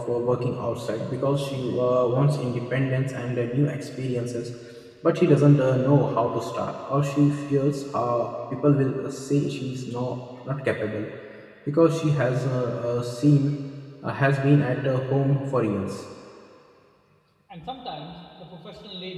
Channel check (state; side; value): identical; both; correlation 1.00